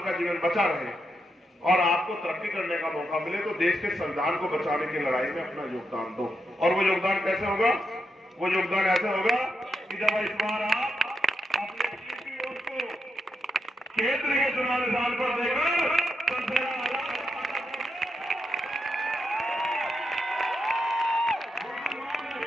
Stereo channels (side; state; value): both; normal; correlation 0.83